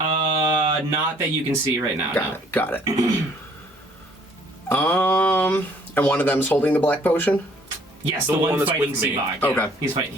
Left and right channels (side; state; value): both; normal; correlation 0.60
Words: Not that you can see right now. Got it. And one of them's holding the black potion? Yes, The the one one that's fighting with me. Seabog. Yeah. Okay. He's fighting.